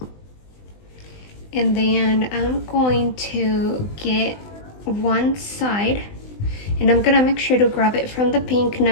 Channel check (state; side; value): late; right; 20 ms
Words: And then I'm going to get one side, and I'm gonna make sure to grab it from the pink,